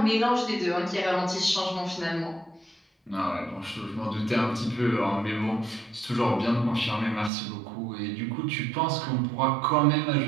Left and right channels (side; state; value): left; drops out; at 7.3 s